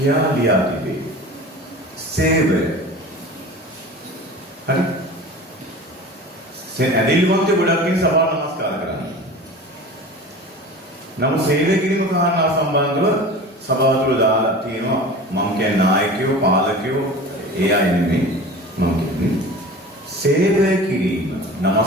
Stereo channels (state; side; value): normal; both; correlation 0.36